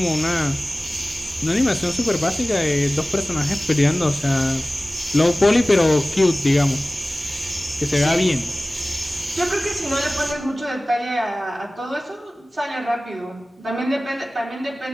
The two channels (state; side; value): normal; both; correlation 0.97